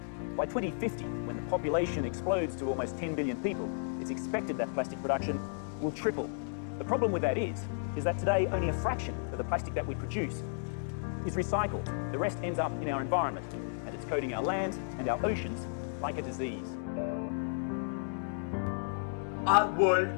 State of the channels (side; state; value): right; silent; digital silence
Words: By 2050, when the population explodes to almost 10 billion people, it's expected that plastic production will triple. The problem with that is that today only a fraction of the plastic that we produce is recycled. The rest ends up in our environment, and it's coating our land and our oceans like a disease. Our